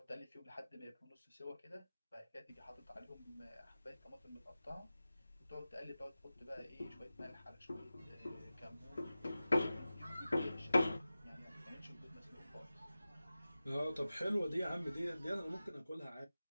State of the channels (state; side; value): inverted; both; correlation -0.95